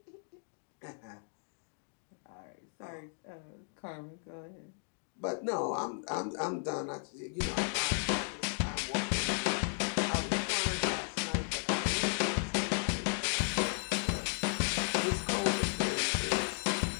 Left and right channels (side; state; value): right; silent; 55 dB below the other